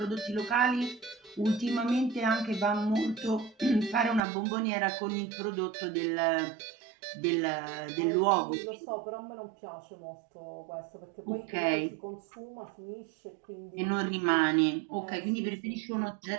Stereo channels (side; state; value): left; drops out; at 4.2 s